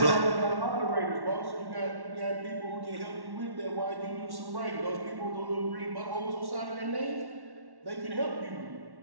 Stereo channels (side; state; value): left; late; 1.1 ms